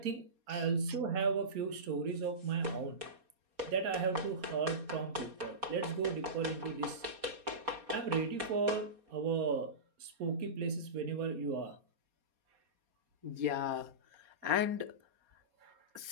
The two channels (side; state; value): left; late; 4.2 ms